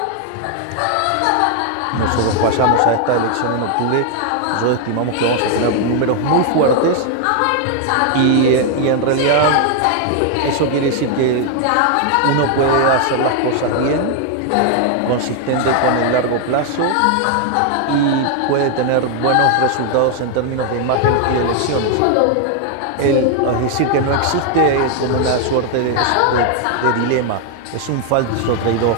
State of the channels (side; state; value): both; different; correlation 0.00